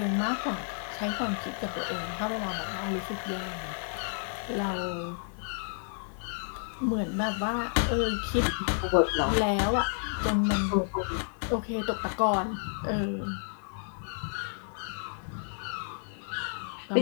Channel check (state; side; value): silent; right; 57 dB below the other